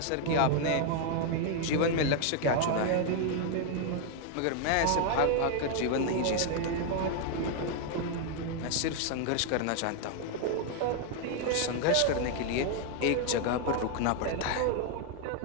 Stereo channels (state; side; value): different; both; correlation 0.01